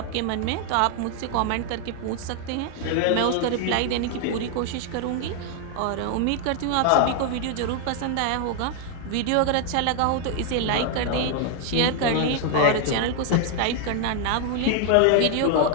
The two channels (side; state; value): both; different; correlation 0.00